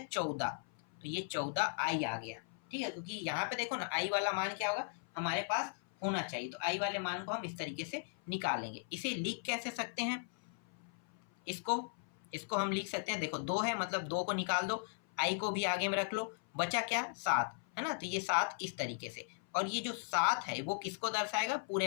14। तो ये 14 आई आ गया, ठीक है। क्योंकि यहाँ पे देखो ना, आई वाला मान क्या होगा, हमारे पास होना चाहिए, तो आई वाले मान को हम इस तरीके से निकालेंगे। इसे लिख कैसे सकते हैं, इसको हम लिख सकते हैं, देखो 2 है, मतलब 2 को निकाल दो, आई को भी आगे में रख लो, बचा क्या, 7, है ना। तो ये 7 इस तरीके से, और ये जो 7 है वो किसको दर्शाएगा,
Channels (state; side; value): silent; right; 53 dB below the other